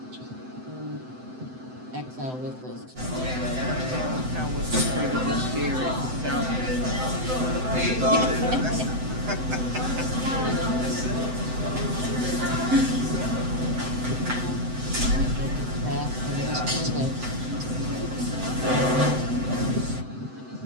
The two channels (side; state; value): left; late; 7.8 ms